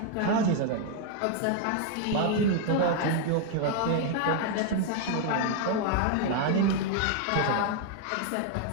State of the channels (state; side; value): different; both; correlation 0.00